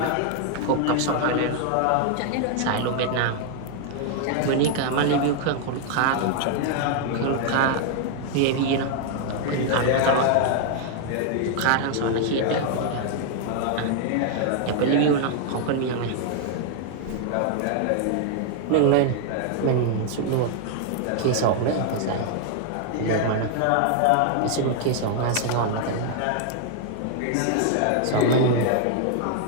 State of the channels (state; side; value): different; both; correlation 0.00